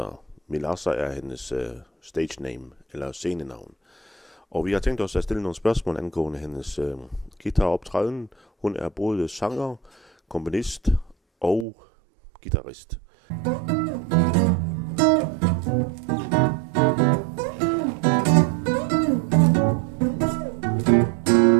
Milasa er hendes stage name, eller scenenavn. Og vi har tænkt os at stille nogle spørgsmål angående hendes guitaroptræden. Hun er både sanger, komponist og guitarist.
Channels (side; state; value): left; drops out; at 11.7 s